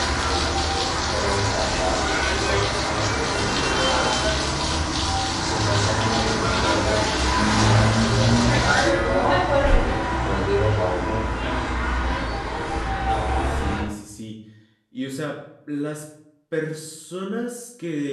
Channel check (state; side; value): identical; both; correlation 1.00